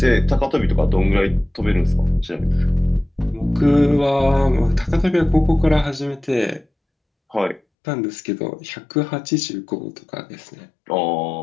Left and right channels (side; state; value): right; drops out; at 7.6 s